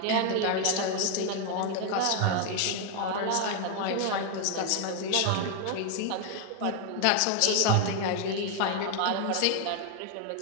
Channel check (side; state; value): both; different; correlation 0.01